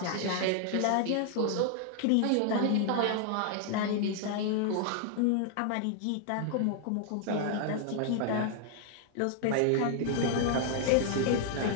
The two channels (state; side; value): different; both; correlation 0.00